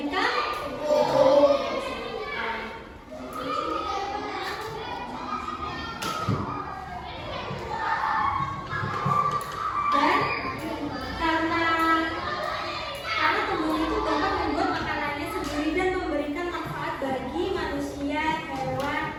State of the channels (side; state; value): both; identical; correlation 1.00